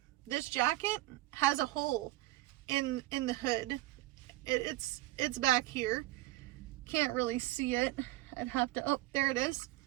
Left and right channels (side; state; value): left; quieter; 18.1 dB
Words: this jacket has a hole in the hood. It's back here. Can't really see it. I'd have to, oh, there it is.